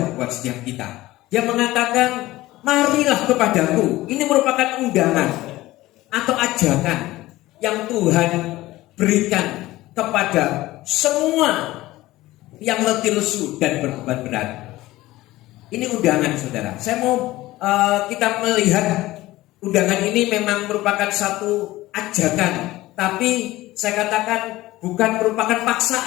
buat setiap kita. Dia mengatakan marilah kepadaku. Ini merupakan undangan atau ajakan yang Tuhan berikan kepada semua yang letih lesu dan berbeban berat. Ini undangan saudara. Saya mau kita melihat undangan ini memang merupakan satu ajakan, tapi saya katakan bukan merupakan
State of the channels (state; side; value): quieter; right; 17.5 dB